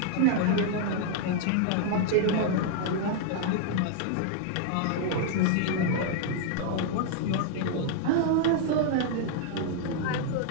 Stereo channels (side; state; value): both; different; correlation 0.00